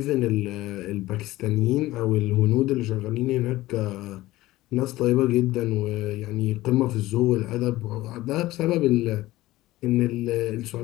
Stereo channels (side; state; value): right; quieter; 17.3 dB